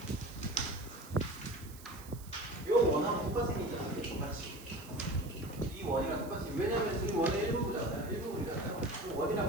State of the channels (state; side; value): noise; right; hiss, 18 dB below the sound